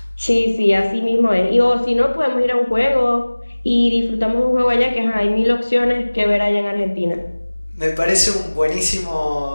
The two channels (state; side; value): inverted; both; correlation -1.00